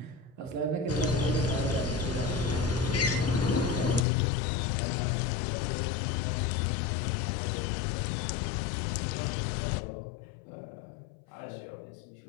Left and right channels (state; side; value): drops out; right; at 4.0 s